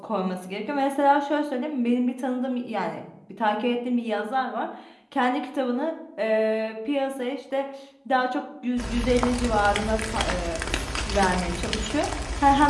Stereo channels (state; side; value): identical; both; correlation 1.00